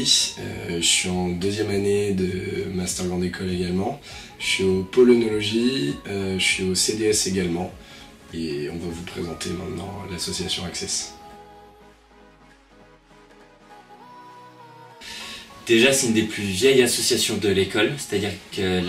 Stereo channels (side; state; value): both; identical; correlation 1.00